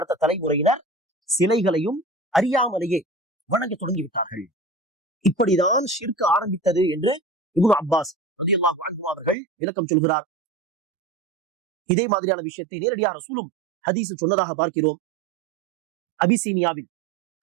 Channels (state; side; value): drops out; left; at 9.3 s